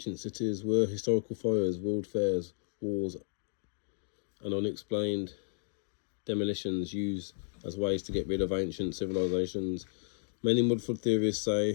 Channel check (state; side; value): silent; right; digital silence